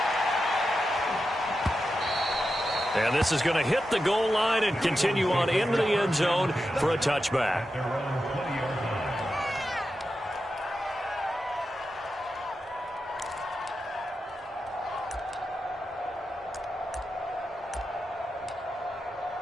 And this is going to hit the goal line and continue on into the end zone for a touchback.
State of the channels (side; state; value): both; normal; correlation 0.89